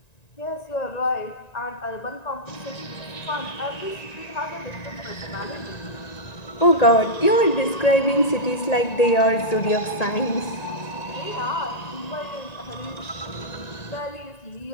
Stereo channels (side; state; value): right; late; 1.9 ms